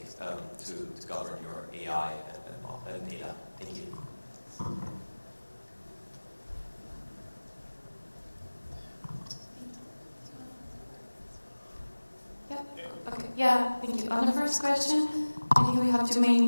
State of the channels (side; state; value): both; inverted; correlation -1.00